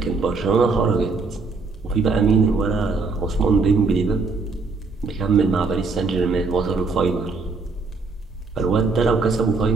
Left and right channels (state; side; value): quieter; left; 4.1 dB